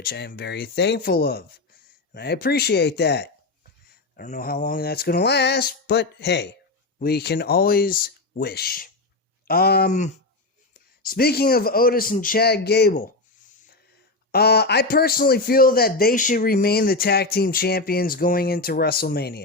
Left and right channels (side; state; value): right; quieter; 3.2 dB